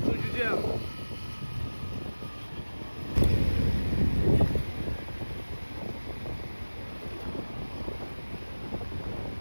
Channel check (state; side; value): inverted; both; correlation -1.00